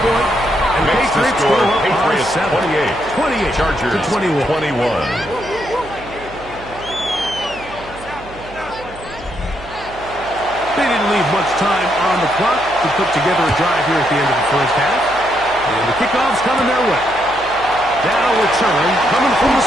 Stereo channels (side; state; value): right; noise; hum, 18 dB below the sound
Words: point. And Makes the Patriots score go up by Patriots 7. 28. 28 Chargers to 21. 21. They didn't leave much time on the clock to put together a drive here at the end of the first half. And the kickoff's coming their way. Now return coming from the